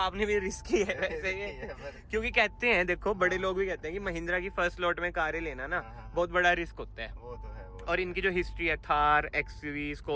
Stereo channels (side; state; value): both; identical; correlation 1.00